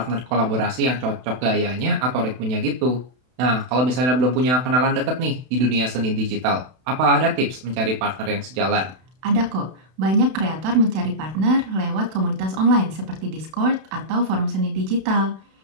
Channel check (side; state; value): left; late; 32 ms